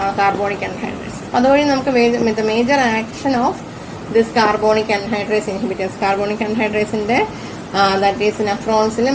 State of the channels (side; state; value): both; identical; correlation 1.00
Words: carbonic anhydrase. അതുവഴി നമുക്ക് major action of this carbonic anhydrase inhibitors. Carbonic ആൻഹൈഡ്രേസിന്റെ that is നെഫ്രോൺസിൽ